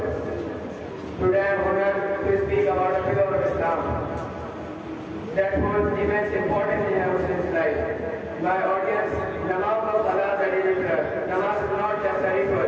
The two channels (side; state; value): both; identical; correlation 1.00